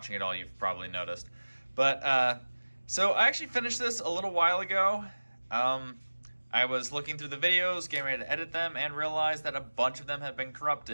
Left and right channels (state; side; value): inverted; both; correlation -1.00